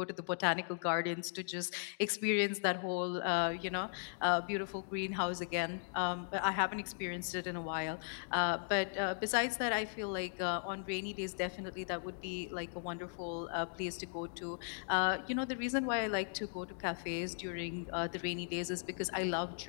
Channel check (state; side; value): silent; right; digital silence